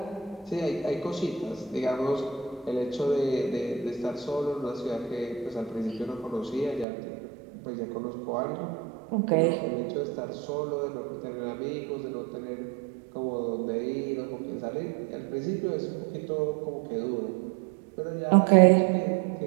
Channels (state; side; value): drops out; left; at 6.9 s